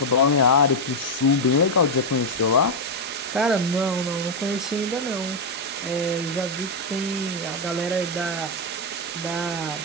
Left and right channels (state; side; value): normal; both; correlation 0.01